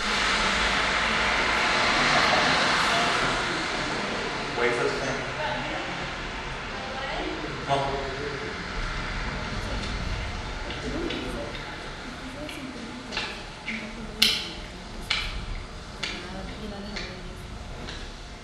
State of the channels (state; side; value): identical; both; correlation 1.00